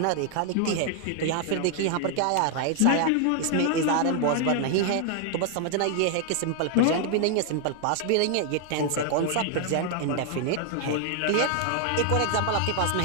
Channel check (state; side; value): different; both; correlation 0.00